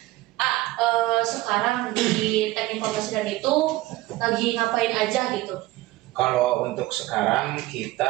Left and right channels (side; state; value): left; quieter; 18.1 dB